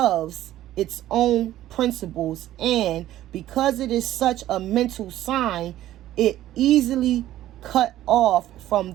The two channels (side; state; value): left; quieter; 13.7 dB